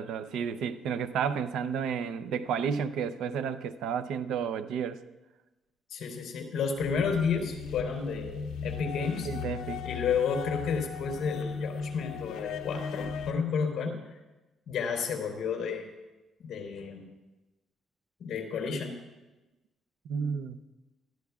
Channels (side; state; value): both; normal; correlation 0.61